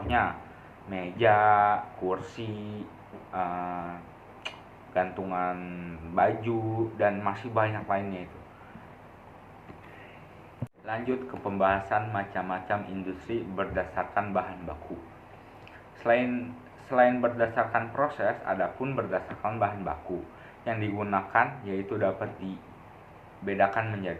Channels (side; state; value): both; identical; correlation 1.00